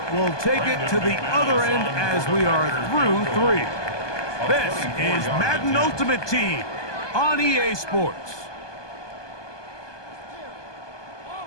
we'll take it to the other end as we are through 3. This is Madden Ultimate Team on EA Sports.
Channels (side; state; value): right; late; 1.2 ms